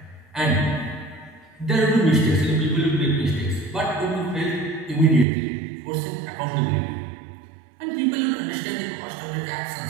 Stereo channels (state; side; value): drops out; left; at 5.2 s